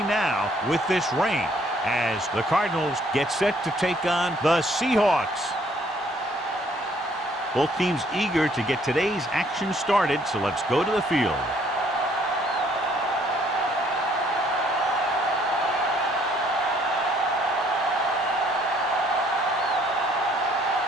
now with this rain, as the Cardinals get set to take on the Seahawks. Both teams eager to get today's action started, so let's go to the field.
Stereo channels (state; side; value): normal; both; correlation 0.63